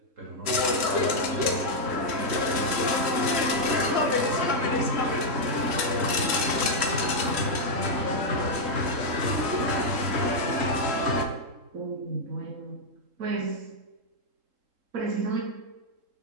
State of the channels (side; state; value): left; late; 3.7 ms